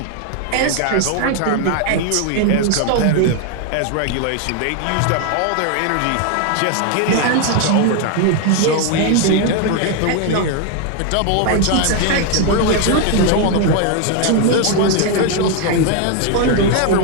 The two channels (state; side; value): different; both; correlation 0.01